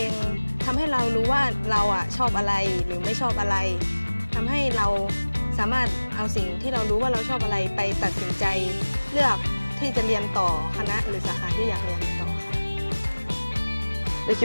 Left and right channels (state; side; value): inverted; both; correlation -1.00